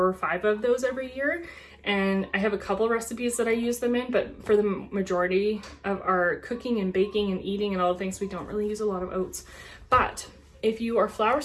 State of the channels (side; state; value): both; identical; correlation 1.00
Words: or 5 of those every year. And I have a couple recipes that I use them in, but for the majority of our cooking and baking and eating and all the things, we don't really use a lot of oats. But if you are flour